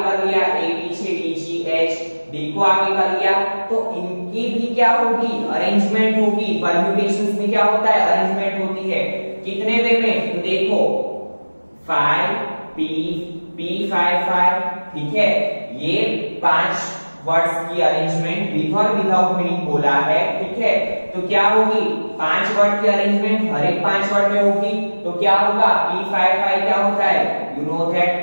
कर लिया, A पीछे, D G H, D को आगे कर लिया, तो इनकी भी क्या होगी, अरेंजमेंट होगी। परम्यूटेशंस में क्या होता है, अरेंजमेंट होती है, कितने वे में, तो देखो 5 P P 5 5, ठीक है। ये 5 वर्ड्स की arrangement with or without meaning बोला है, ठीक है। तो क्या होगी, 5 वर्ड की अरेंजमेंट हर एक 5 वर्ड में होगी। तो क्या होगा, P5 क्या होता है, यू नो दैट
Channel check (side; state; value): both; inverted; correlation -1.00